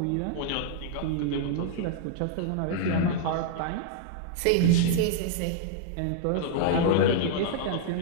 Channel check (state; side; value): different; both; correlation -0.01